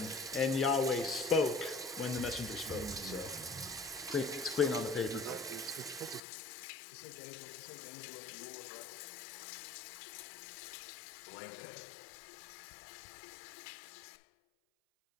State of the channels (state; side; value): drops out; right; at 6.2 s